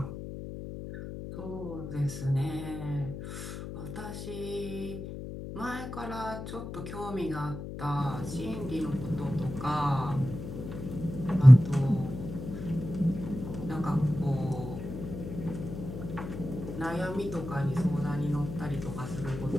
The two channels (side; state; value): left; noise; hum, 8 dB below the sound